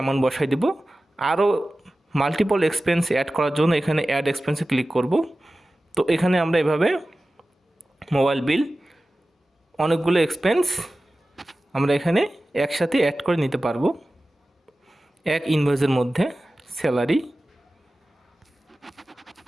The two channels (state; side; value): normal; both; correlation 0.96